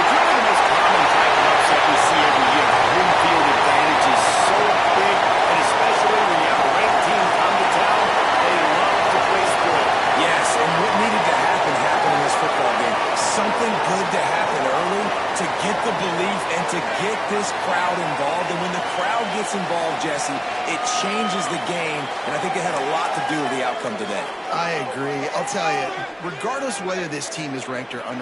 one of the most common type of upset we see every year. Home field advantage is so big, and especially when you have a ranked team come to town, they love to play sport. Yes, and what needed to happen happened in this football game. Something good to happen early to get the belief and to get this crowd involved. And when the crowd gets involved, Jesse, it changes the game, and I think it had a lot to do with the outcome today. I agree. I'll tell you, regardless whether this team is ranked or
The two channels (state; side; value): identical; both; correlation 1.00